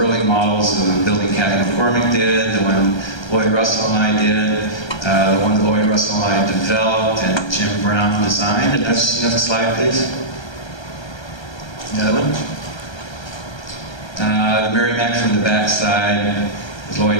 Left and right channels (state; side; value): late; right; 1.3 ms